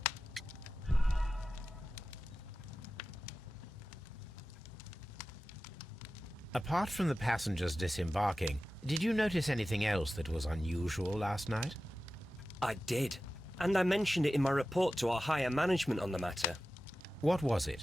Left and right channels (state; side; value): normal; both; correlation 0.94